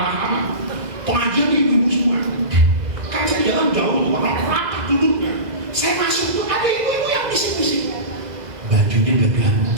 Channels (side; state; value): left; late; 2.0 ms